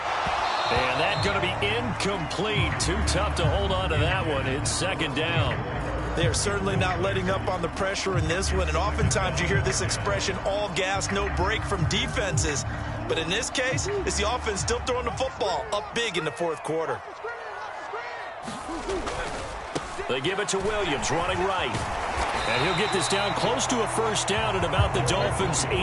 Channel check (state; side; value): identical; both; correlation 1.00